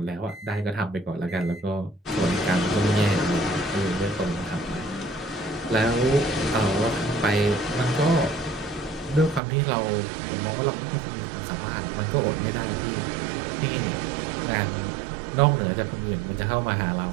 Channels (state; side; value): drops out; left; at 9.4 s